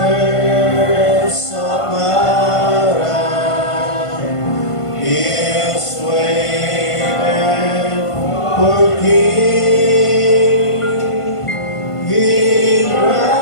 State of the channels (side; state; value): right; late; 1.5 ms